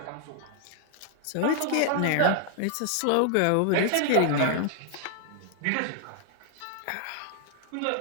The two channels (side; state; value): both; different; correlation 0.00